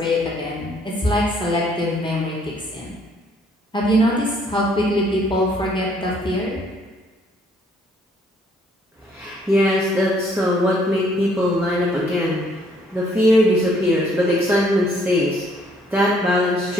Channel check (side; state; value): both; normal; correlation 0.64